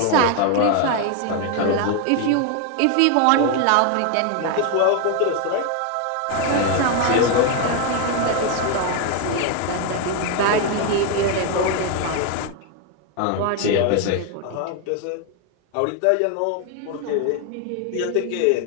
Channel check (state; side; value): different; both; correlation 0.01